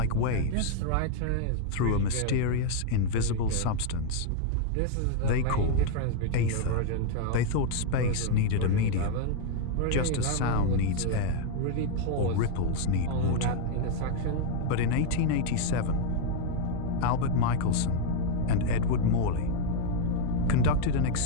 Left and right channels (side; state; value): both; different; correlation 0.00